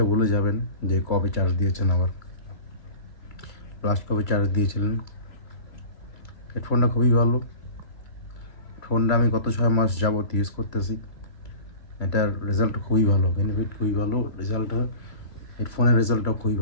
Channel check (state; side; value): late; right; 2.3 ms